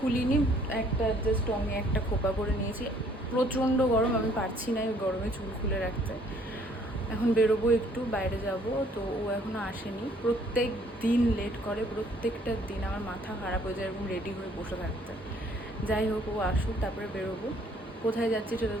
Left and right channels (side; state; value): both; normal; correlation 0.61